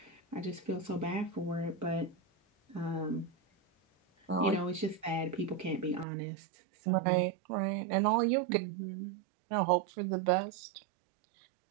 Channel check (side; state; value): left; drops out; at 6.1 s